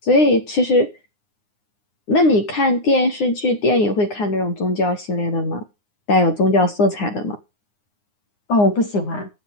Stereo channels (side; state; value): right; late; 9.7 ms